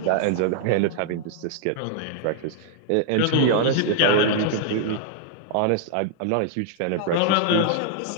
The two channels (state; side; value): different; both; correlation -0.01